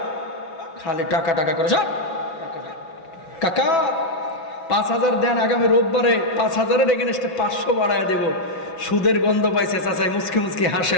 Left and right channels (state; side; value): late; right; 6.0 ms